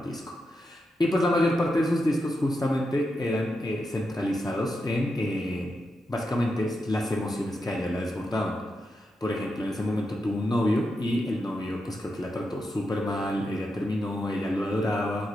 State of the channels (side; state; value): both; normal; correlation 0.86